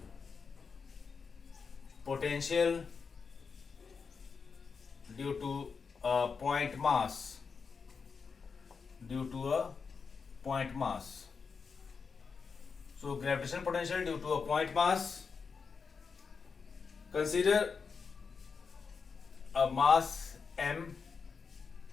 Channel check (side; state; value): right; quieter; 5.4 dB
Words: potential due to a point mass. So gravitational potential due to a point mass. Consider a mass m.